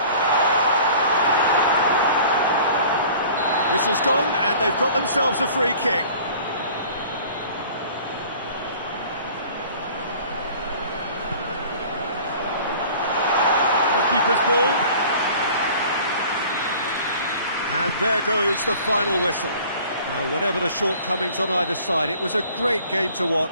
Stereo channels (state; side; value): inverted; both; correlation -0.48